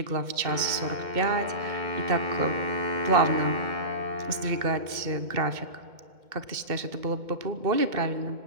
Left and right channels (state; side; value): late; left; 2.2 ms